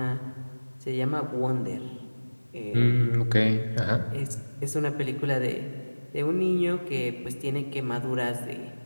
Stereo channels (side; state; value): both; inverted; correlation -1.00